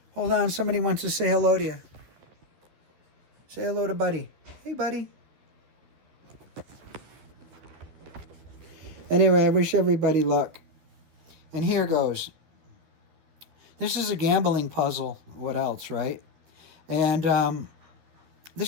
Hold on, somebody wants to say hello to you. Say hello to Buddy. Hey, Buddy. Anyway, I wish everybody luck. And here goes. This is a gambling puzzle. What else, right? And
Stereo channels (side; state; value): left; late; 12 ms